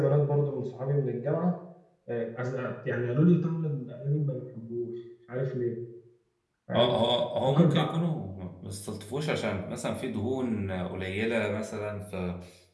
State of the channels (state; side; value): identical; both; correlation 1.00